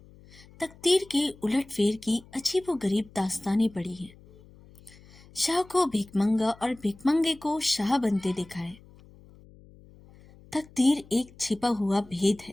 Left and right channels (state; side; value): noise; left; hum, 24 dB below the sound